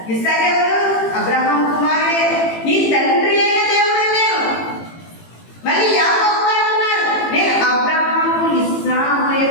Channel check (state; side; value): late; right; 18 ms